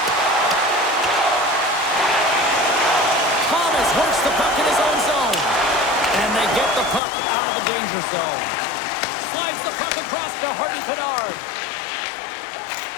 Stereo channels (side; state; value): right; drops out; at 7.0 s